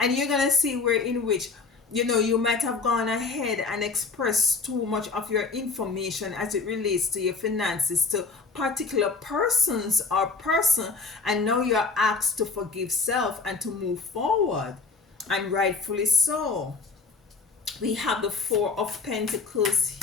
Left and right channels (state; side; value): quieter; right; 4.5 dB